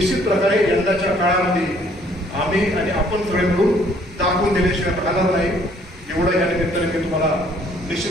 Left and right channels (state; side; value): normal; both; correlation 0.62